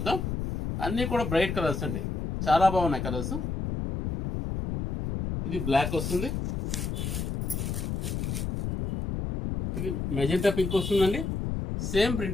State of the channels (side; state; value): left; noise; rumble, 2 dB below the sound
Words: అన్నీ కూడా బ్రైట్ కలర్స్ అండి, చాలా బాగున్నాయి కలర్స్. ఇది బ్లాక్ వస్తుంది, ఇది మెజెంటా పింక్ వస్తుందండి, సేమ్